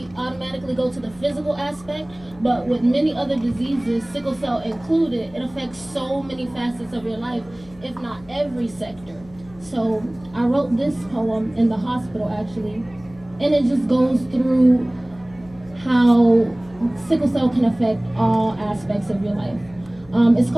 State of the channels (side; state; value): left; noise; hum, 23 dB below the sound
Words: automatically go to the physical aspect, but with many other diseases, sickle cell included, it affects so many facets of your life, if not every sector. So I wrote this poem in the hospital, actually, and it just goes through how sickle cell can affect all aspects of your life. It's